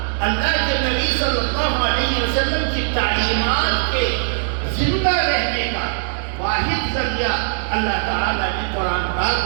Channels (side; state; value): left; silent; 66 dB below the other